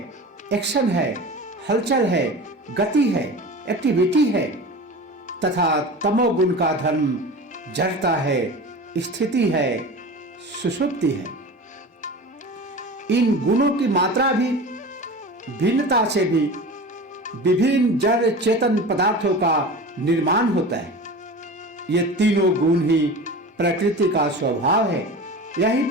एक्शन है, हलचल है, गति है, एक्टिविटी है, तथा तमोगुण का धर्म जड़ता है, स्थिति है, सुषुप्ति है। इन गुणों की मात्रा भी भिन्नता से भी विभिन्न जड़ चेतन पदार्थों का निर्माण होता है। ये तीनों गुण ही प्रकृति का स्वभाव है। यही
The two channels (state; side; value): normal; both; correlation 0.33